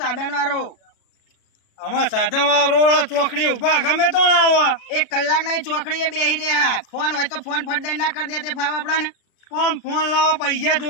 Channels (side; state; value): right; late; 36 ms